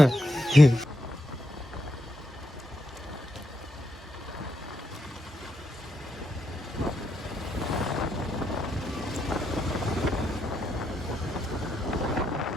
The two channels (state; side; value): normal; both; correlation 0.81